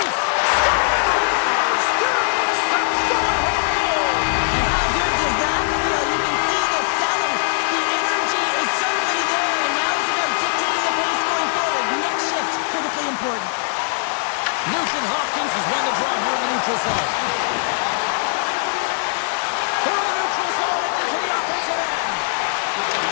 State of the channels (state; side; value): silent; right; 63 dB below the other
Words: Scores! There is the go-ahead goal. And how good does that feel? You can see the selling. The energy is certainly there, and now it's about dictating the pace going forward. Next shift, critically important. Nugent Hopkins has won the draw here in the neutral zone. Through the neutral zone and into the offensive end.